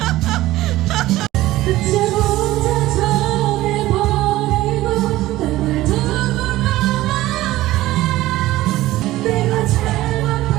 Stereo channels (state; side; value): quieter; left; 16.5 dB